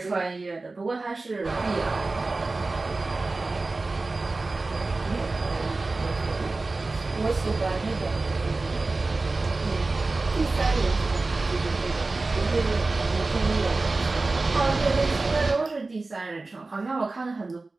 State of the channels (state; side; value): quieter; left; 3.4 dB